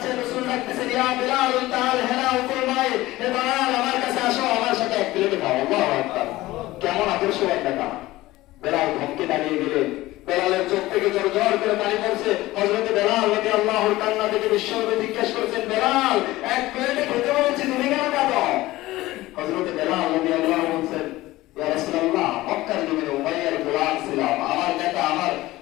রাসূল ডাকতেছেন, ইয়া বেলাল তাআল হেলা ফরমায়, হে বেলাল আমার কাছে আসো, আমার সাথে এক প্লেট খাও। আল্লাহু আকবার, কেমন আদর্শবান নেতা। বেলাল ধমকে দাঁড়িয়ে গেলেন, বেলালের চোখ থেকে জোর জোর করে পানি পড়ছে। হযরত বেলাল রাদিয়াল্লাহু তাআলা থেকে বিশ্বনবী জিজ্ঞাসা করেছেন, বেলাল এক প্লেটে খেতে বলছি, তুমি কেন খাও? হযরত বেলাল রাদিয়াল্লাহু বলছেন, ইয়া রাসূলুল্লাহ, মক্কার জমিনে উমাইয়ার গোলাম ছিলাম, আমার নেতা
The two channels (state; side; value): quieter; right; 17.8 dB